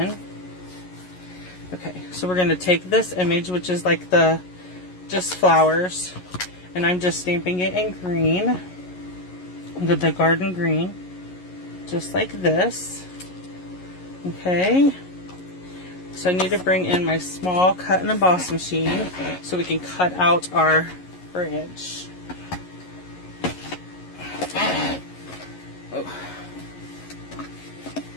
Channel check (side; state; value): right; late; 11 ms